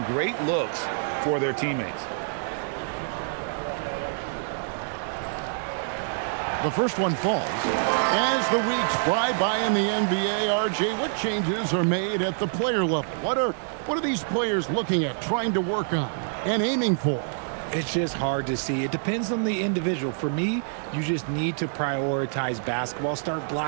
great looks for their teammates. The first one falls. As the weeks fly by in the NBA, RJ, what changes are made at the player level? What are these players looking at, trying to work on, and aiming for? It's just hard to see. It depends on the individual. For me, you just need to prioritize basketball, start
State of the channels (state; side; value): silent; left; digital silence